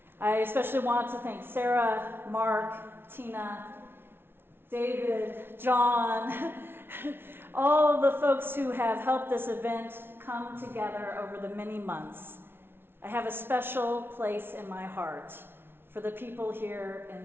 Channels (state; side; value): late; left; 0.11 ms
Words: I especially want to thank Sarah, Mark, Tina, David, John, all the folks who have helped this event come together over the many months. I have a special place in my heart for the people here